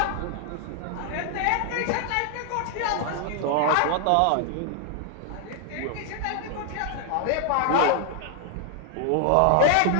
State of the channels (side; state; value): both; different; correlation 0.00